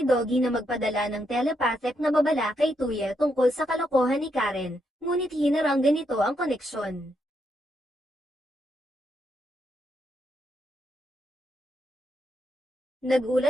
Doggy na magpadala ng telepathic na babala kay Tuya tungkol sa kalokohan ni Karen, ngunit hinaranggan nito ang koneksyon.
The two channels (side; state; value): both; normal; correlation 0.79